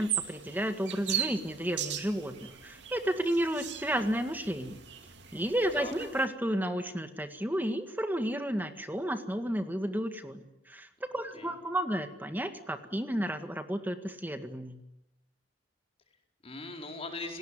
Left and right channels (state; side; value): normal; both; correlation 0.73